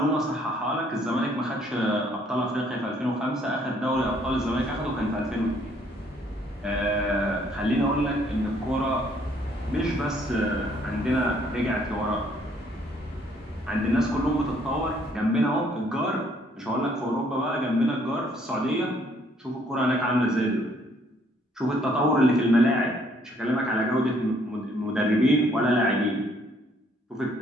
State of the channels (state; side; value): normal; both; correlation 0.65